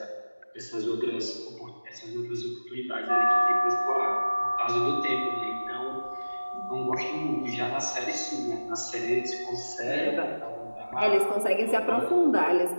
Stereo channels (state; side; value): inverted; both; correlation -1.00